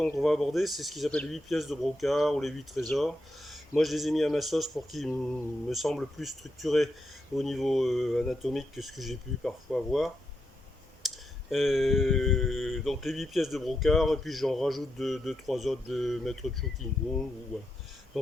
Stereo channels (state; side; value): normal; both; correlation 0.84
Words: qu'on va aborder, c'est ce qu'ils appellent les 8 pièces de brocart ou les 8 trésors. Moi, je les ai mis à ma sauce pour qu'ils me semblent plus structurés au niveau anatomique que ce que j'ai pu parfois voir. Donc les 8 pièces de brocart, et puis j'en rajoute 2-3 autres de Maître Chu King Kung. Voilà.